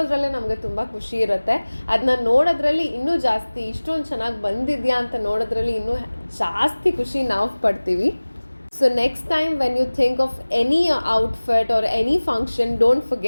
ನಮಗೆ ತುಂಬ ಖುಷಿ ಇರುತ್ತೆ. ಅದನ್ನ ನೋಡೋದ್ರಲ್ಲಿ ಇನ್ನೂ ಜಾಸ್ತಿ, ಇಷ್ಟೊಂದು ಚೆನ್ನಾಗಿ ಬಂದಿದೆಯಾ ಅಂತ ನೋಡೋದ್ರಲ್ಲಿ ಇನ್ನೂ ಜಾಸ್ತಿ ಖುಷಿ ನಾವು ಪಡ್ತೀವಿ. So next time when you think of any outfit or any function, don't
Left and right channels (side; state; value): both; inverted; correlation -1.00